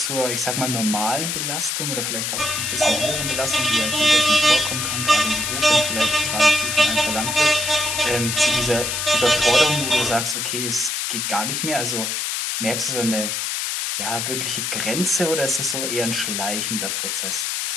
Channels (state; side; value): noise; left; hiss, 1 dB below the sound